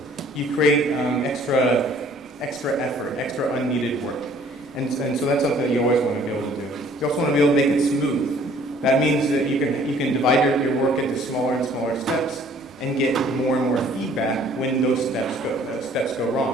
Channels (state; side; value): normal; both; correlation 0.57